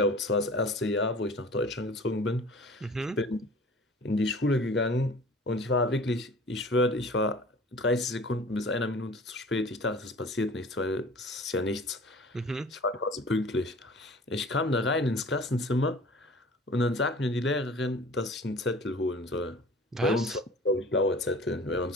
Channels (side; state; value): both; normal; correlation 0.44